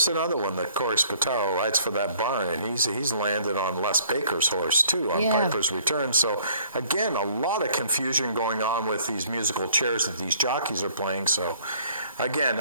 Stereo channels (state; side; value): inverted; both; correlation -0.58